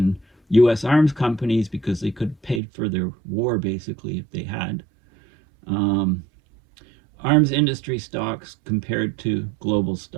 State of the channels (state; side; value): drops out; left; at 2.6 s